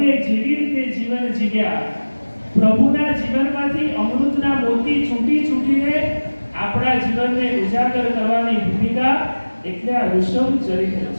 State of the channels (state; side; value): inverted; both; correlation -1.00